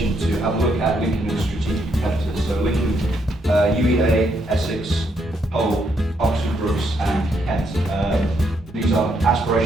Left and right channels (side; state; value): both; normal; correlation 0.75